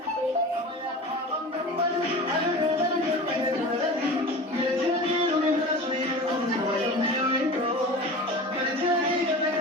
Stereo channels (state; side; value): normal; both; correlation 0.34